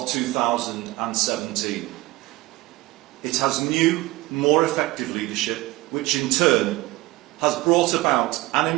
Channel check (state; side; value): quieter; left; 19.8 dB